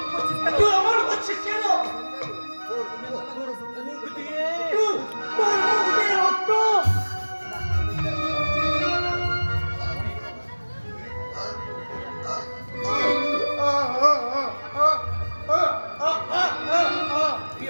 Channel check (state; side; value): inverted; both; correlation -1.00